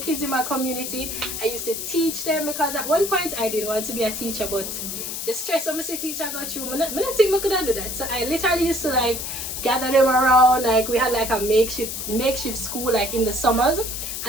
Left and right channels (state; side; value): noise; left; hiss, 5 dB below the sound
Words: in my community. I used to teach them, because at one point I didn't want to be a teacher, but the stress of my teacher got through. I don't think I could do that. So I literally used to like gather them around. Like, we had like a makeshift school like in the summers,